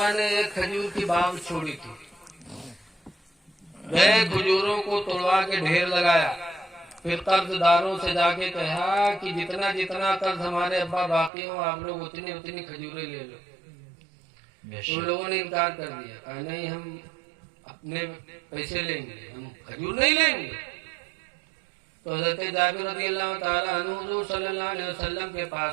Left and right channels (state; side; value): drops out; left; at 11.3 s